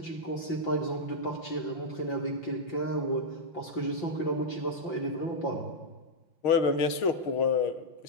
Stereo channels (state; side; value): late; right; 5.8 ms